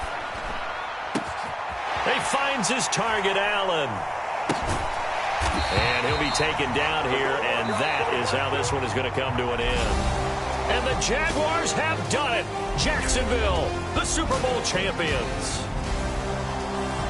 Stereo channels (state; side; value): identical; both; correlation 1.00